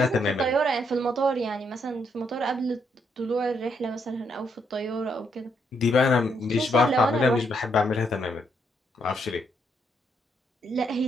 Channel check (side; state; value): both; normal; correlation 0.75